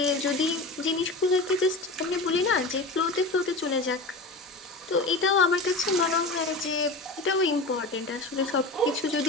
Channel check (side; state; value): right; quieter; 3.0 dB